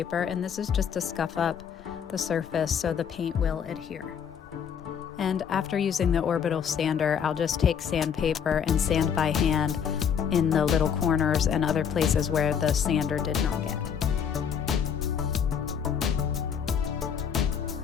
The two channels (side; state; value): right; quieter; 7.6 dB